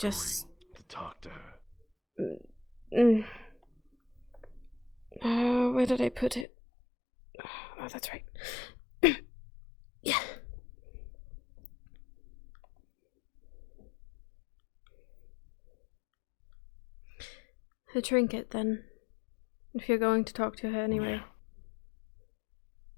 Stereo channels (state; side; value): drops out; right; at 6.5 s